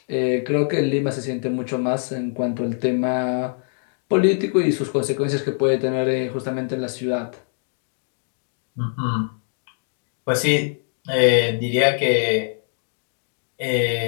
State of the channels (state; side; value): silent; right; 63 dB below the other